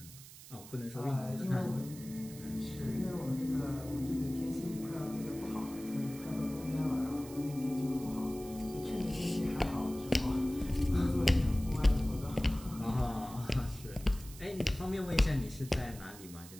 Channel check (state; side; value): noise; right; hiss, 17 dB below the sound